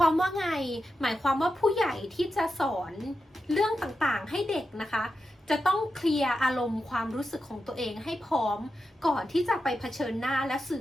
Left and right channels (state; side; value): normal; both; correlation 0.89